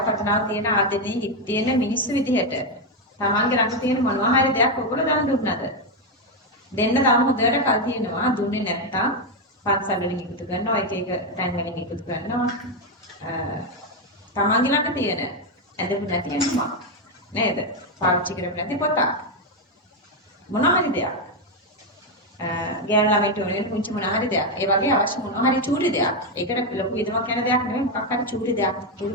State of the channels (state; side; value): normal; both; correlation 0.05